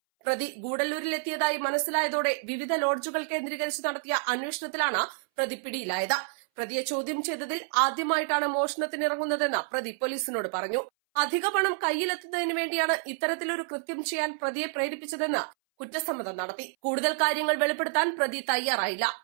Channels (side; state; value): left; silent; 59 dB below the other